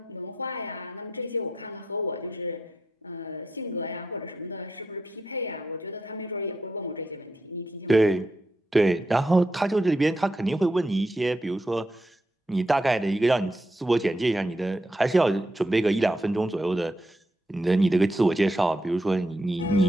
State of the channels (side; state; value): both; normal; correlation 0.83